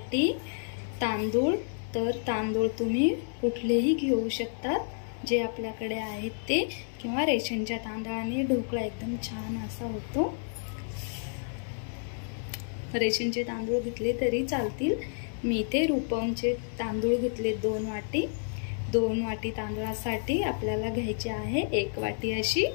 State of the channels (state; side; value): silent; right; digital silence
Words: तांदूळ। तर तांदूळ तुम्ही कुठलेही घेऊ शकतात जे आपल्याकडे आहेत ते, किंवा रेशनच्या तांदळाने ढोकळा एकदम छान असा होतो। रेशनचे तांदूळ घेतले तरी चालतील। मी ते रूपमचे तांदूळ घेतले 2 वाटी। 2 वाटी तांदळासाठी आपल्याला घ्यायची आहे 1 वाटी अशी